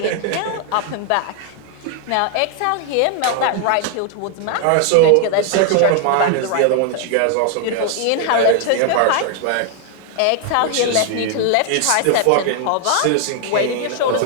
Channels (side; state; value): both; different; correlation 0.00